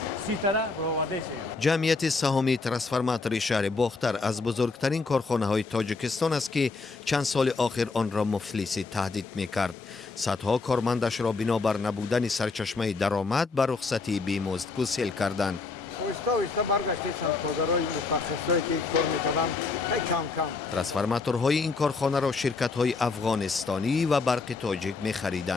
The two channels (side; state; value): right; quieter; 4.1 dB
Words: 30 تا برآوردهشان. جمعیت سهامی ترانسفورماتور شهر باختر از بزرگترین کارخانه های تاجیکستان است که چند سال آخر آن را مفلسی تهدید می‌کرد. صدها کارمندش را بنابر نبودن سرچشمه درآمد به رخصتی بیمزد گسیل کردند. ترانسفورماتورهای این کارخانه را شرکت‌های افغانستانی و برق تاجیک